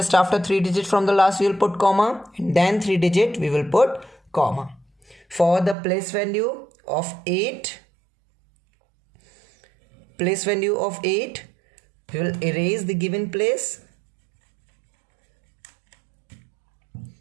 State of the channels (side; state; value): left; drops out; at 5.8 s